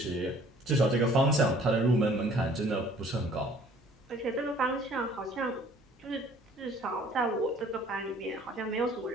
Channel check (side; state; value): both; normal; correlation 0.55